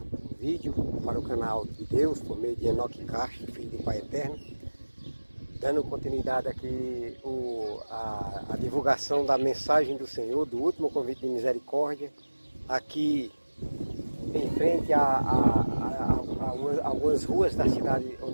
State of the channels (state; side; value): inverted; both; correlation -1.00